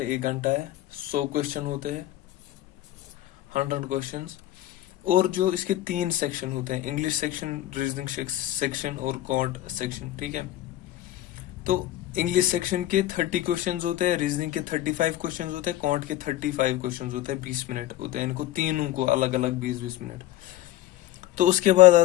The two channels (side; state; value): right; quieter; 14.6 dB